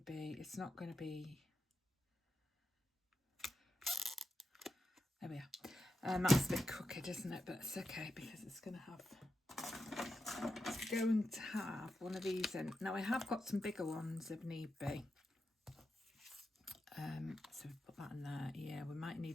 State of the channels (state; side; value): normal; both; correlation 0.88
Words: be, there we are. That's a bit crooked, isn't it? But it's okay because it's going to have one of these in. Now I have got some bigger ones if need be. So we put that in there. Yeah, we might